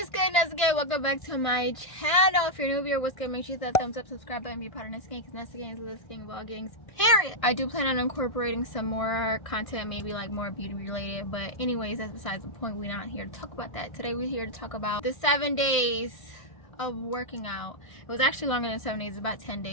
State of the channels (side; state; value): right; late; 1.5 ms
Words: good, Nessa? Welcome back to my channel. If you're new here, what's good? Make sure you hit that thumbs up, subscribe button, be part of Nessa Gang, because Nessa Gang is Nessa Gang vlogging, period. I do plan on incorporating some more content, maybe like more beauty related, but anyways, that's besides the point. We're not here to talk about that. Today we're here to talk about the 7 days of working out. It was actually longer than 7 days, about 10